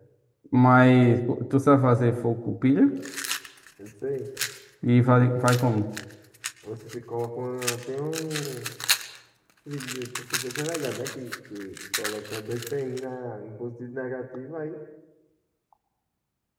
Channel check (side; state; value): both; identical; correlation 1.00